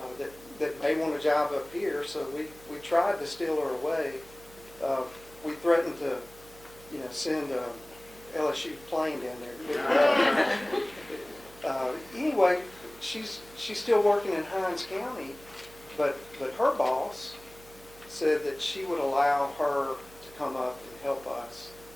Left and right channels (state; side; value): noise; right; hum, 22 dB below the sound